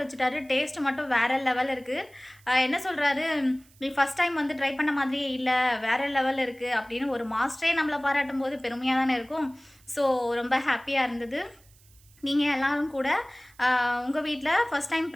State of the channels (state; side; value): noise; right; hiss, 29 dB below the sound